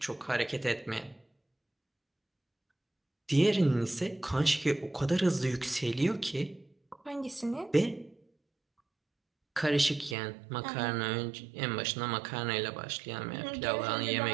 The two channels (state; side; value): drops out; left; at 10.2 s